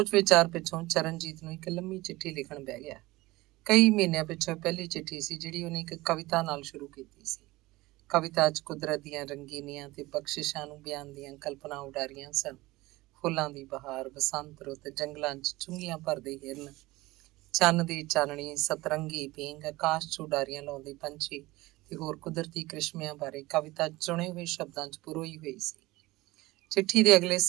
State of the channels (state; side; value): quieter; left; 19.9 dB